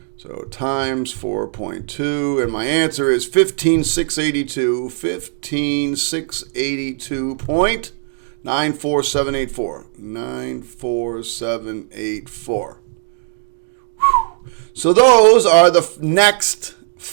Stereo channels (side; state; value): left; silent; digital silence